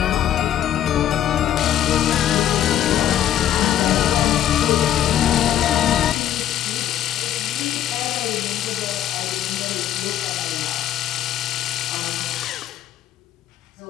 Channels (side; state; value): right; quieter; 11.3 dB